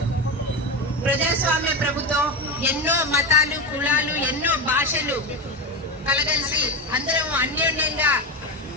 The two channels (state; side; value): normal; both; correlation 0.17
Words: ప్రజాస్వామ్య ప్రభుత్వం, ఎన్నో మతాలు, కులాలు, ఎన్నో భాషలు కలగలిసి అందరం అన్యోన్యంగా